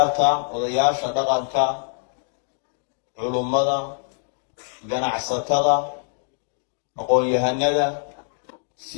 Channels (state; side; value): silent; right; digital silence